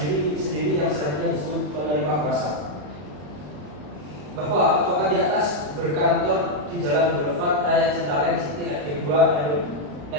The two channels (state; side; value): late; left; 34 ms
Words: yang selanjutnya disebut penerima kuasa. Bahwa advokat di atas berkantor di Jalan Boulevard Raya Citraweng City RT 2 RW